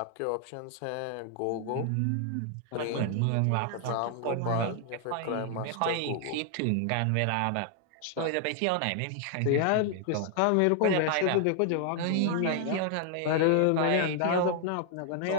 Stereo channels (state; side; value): different; both; correlation 0.00